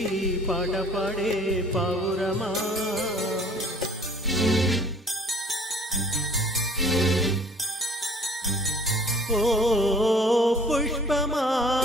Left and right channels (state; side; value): normal; both; correlation 0.52